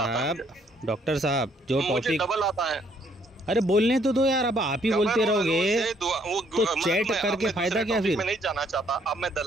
साहब जो टॉपिक डबल आता है। अरे बोलने तो दो यार, अब आप ही बोलते रहोगे तो चैट करके फायदा क्या फिर? मैं नहीं जाना चाहता, अब मैं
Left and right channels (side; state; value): both; normal; correlation 0.67